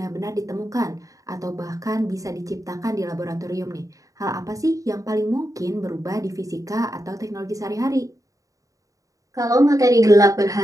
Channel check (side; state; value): left; late; 0.16 ms